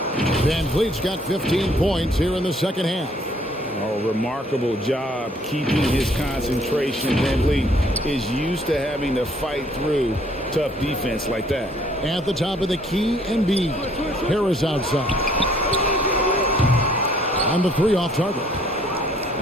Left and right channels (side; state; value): both; normal; correlation 0.62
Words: Van Vliet's got 15 points here in the second half. Oh, remarkable job keeping his concentration. Van Vliet is used to having to fight through tough defense like that. At the top of the key, Embiid. Harris outside. On the 3 off target.